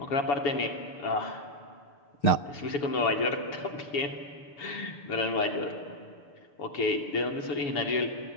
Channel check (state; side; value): late; right; 7.1 ms